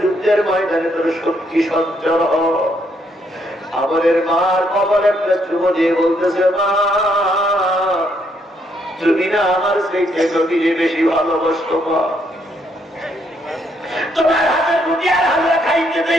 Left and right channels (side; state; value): both; normal; correlation 0.73